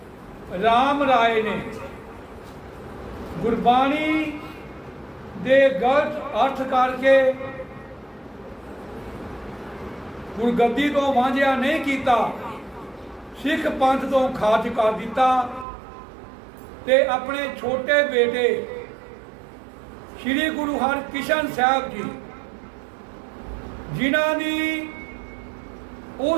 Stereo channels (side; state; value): left; drops out; at 15.7 s